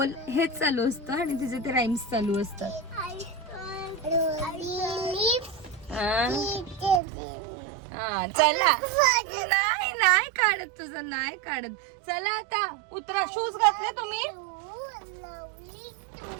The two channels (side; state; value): left; drops out; at 7.0 s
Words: हेच चालू असतं आणि तिचे ते राईम्स चालू असतात. हा चला. नाही काढत तुझं नाही काढत. चला आता उतरा. शूज घातले तुम्ही?